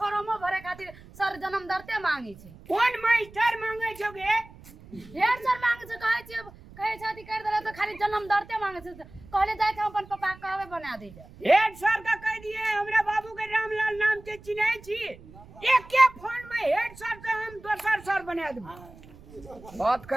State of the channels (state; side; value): noise; right; rumble, 20 dB below the sound